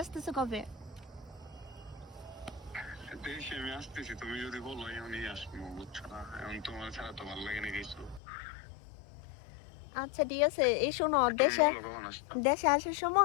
আসতেছো কবে? দেশে আমি আসতেছি, তুমি যদি বলো এমনই আসবো, বুঝছো না? এখন তোমার ছাড়া তো ভালো লাগে না কিছু। আচ্ছা ঠিক আছে। এই শোনো, তুমি দেশে বলো কখন আসবা? দেশে আসার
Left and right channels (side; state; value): right; drops out; at 8.2 s